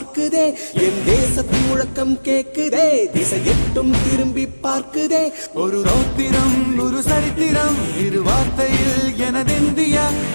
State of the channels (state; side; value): inverted; both; correlation -1.00